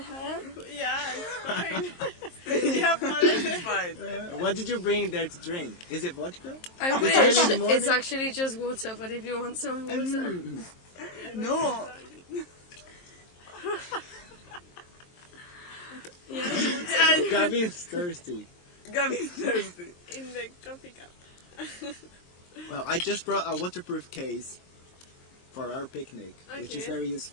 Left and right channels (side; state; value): right; late; 23 ms